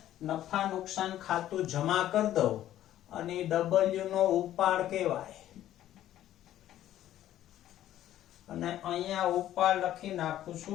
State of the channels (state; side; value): quieter; right; 12.6 dB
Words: નફા નુકસાન ખાતું જમા કરી દો અને W નો ઉપાડ કહેવાય. અને અહીંયા ઉપાડ લખી નાખું